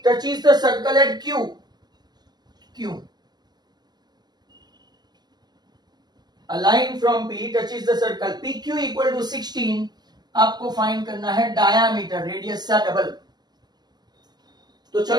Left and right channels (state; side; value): late; left; 0.20 ms